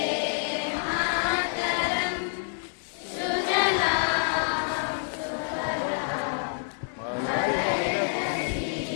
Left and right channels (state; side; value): silent; right; digital silence